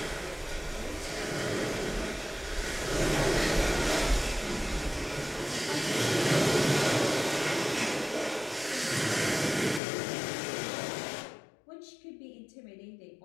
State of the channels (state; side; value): drops out; right; at 9.8 s